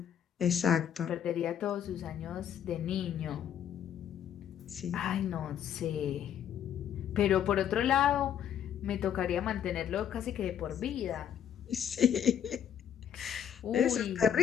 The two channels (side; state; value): right; quieter; 9.3 dB